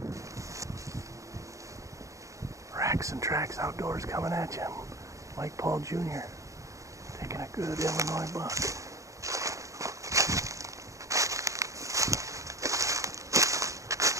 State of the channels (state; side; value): late; left; 0.15 ms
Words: Racks and Tracks Outdoors coming at you. Mike Paul Jr. taking a good Illinois buck.